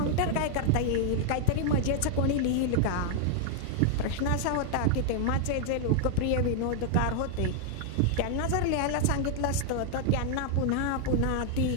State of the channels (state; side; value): different; both; correlation 0.00